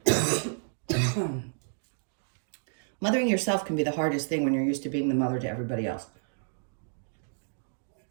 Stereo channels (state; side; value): silent; left; digital silence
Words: on. Mothering yourself can be the hardest thing when you're used to being the mother to everybody else.